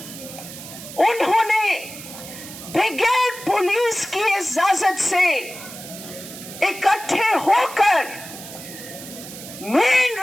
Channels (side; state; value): right; noise; hiss, 13 dB below the sound